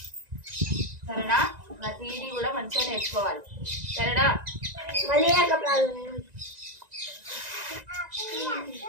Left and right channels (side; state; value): left; late; 1.9 ms